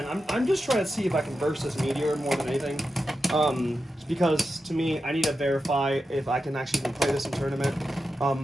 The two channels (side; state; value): both; normal; correlation 0.90